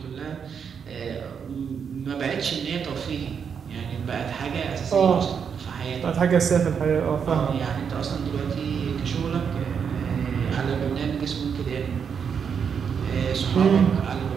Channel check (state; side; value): quieter; left; 6.9 dB